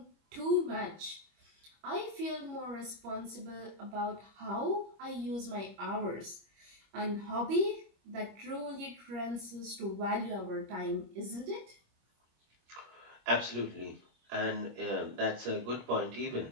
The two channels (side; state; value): left; late; 25 ms